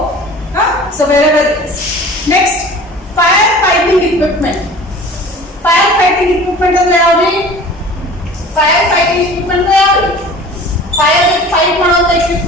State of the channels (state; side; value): normal; both; correlation 0.43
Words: So wherever it is. Next, fire fighting equipment. Fire fighting equipment ಅಂದ್ರೆ ಯಾವ್ದು? Fire fighting equipment ಯಾವುದು? Fire fight ಮಾಡುವಂತ